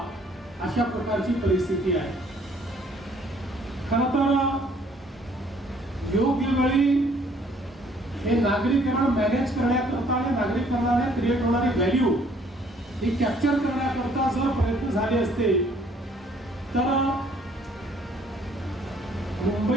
अशा प्रकारची परिस्थिती आहे. खरं तर योग्य वेळी हे नागरीकरण मॅनेज करण्याकरता आणि नागरिकांना क्रिएट होणारी व्हॅल्यू ही कॅप्चर करण्याकरता जर प्रयत्न झाले असते तर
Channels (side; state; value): both; normal; correlation 0.61